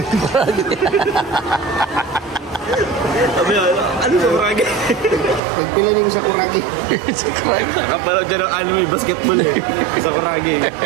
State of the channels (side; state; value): left; drops out; at 5.4 s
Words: Sabi ano sa Kuragi? Nagpila niyo sa Kuragi. Sakuragi. Kapanood yan ng anime basketball eh. Sa Kuragi.